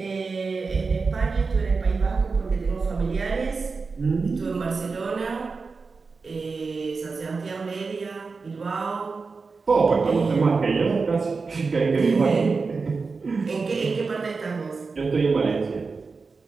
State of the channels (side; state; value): left; quieter; 4.5 dB